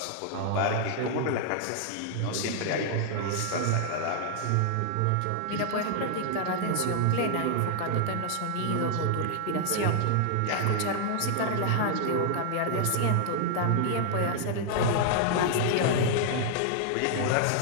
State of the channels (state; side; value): different; both; correlation 0.00